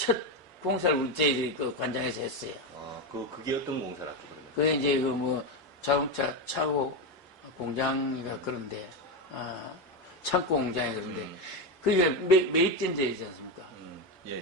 공사를 우리 저희들이 그 관장에서 했어요. 그게 어떤 공사를 했죠, 그러면? 그게 이제 자동차 차고 공장이가 그런데, 창고 공장이 그런데, 그게 매입된 데이지 않습니까? 예.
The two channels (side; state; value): both; normal; correlation 0.12